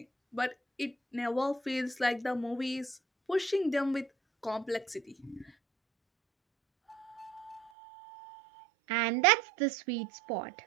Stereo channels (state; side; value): drops out; left; at 7.7 s